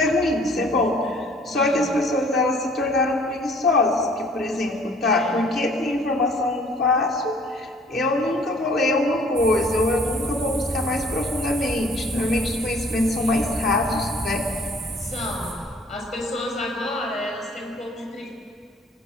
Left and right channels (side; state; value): both; normal; correlation 0.56